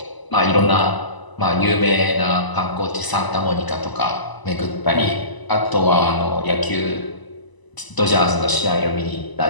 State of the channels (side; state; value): right; late; 1.0 ms